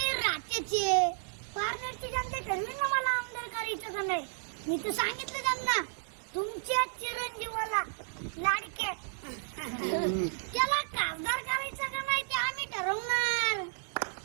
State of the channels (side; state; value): left; silent; digital silence